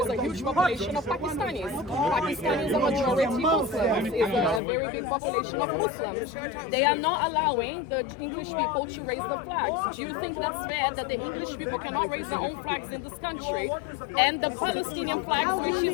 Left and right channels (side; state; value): right; drops out; at 4.6 s